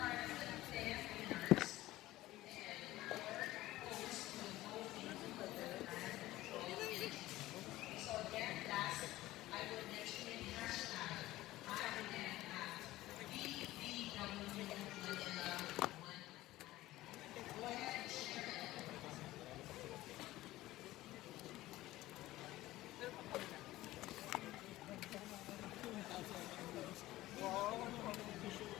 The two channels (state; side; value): quieter; right; 16.6 dB